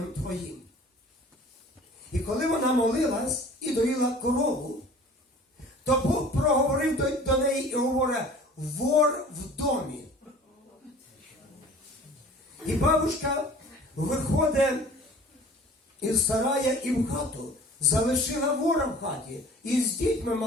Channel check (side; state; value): both; normal; correlation 0.46